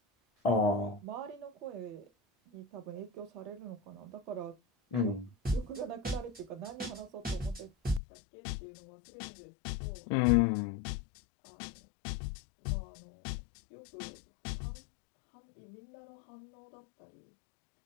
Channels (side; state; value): right; drops out; at 8.0 s